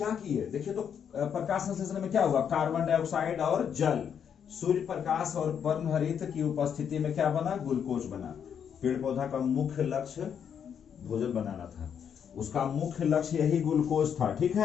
किए देखिए, तो प्रकाश संश्लेषण में क्या हुआ, कार्बन डाइऑक्साइड और जल, सूर्य प्रकाश और पर्णहरित की उपस्थिति में क्या बना, ग्लूकोज बना। पेड़ पौधा का मुख्य लक्ष्य भोजन बनाना था, उसका मुख्य लक्ष्य यही ग्लूकोज था, ठीक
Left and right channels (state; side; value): quieter; right; 8.0 dB